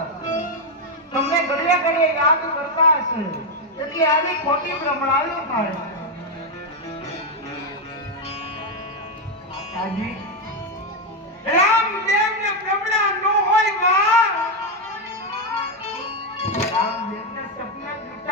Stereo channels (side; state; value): both; normal; correlation 0.05